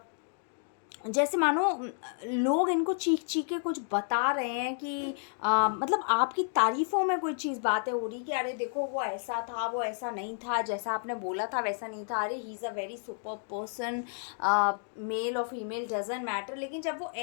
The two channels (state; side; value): silent; right; digital silence